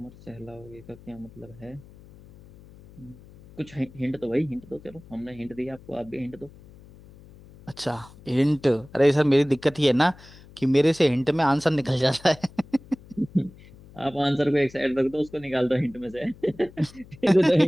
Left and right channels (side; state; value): left; noise; hum, 22 dB below the sound